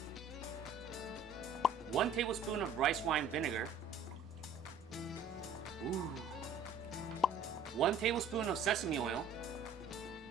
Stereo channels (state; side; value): quieter; left; 4.2 dB